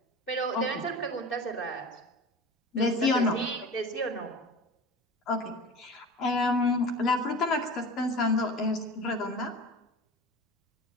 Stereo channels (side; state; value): both; normal; correlation 0.35